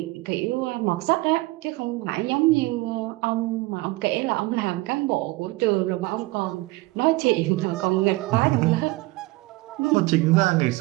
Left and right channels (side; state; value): left; quieter; 21.1 dB